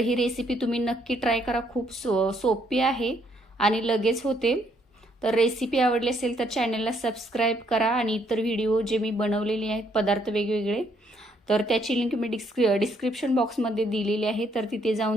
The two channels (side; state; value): both; normal; correlation 0.70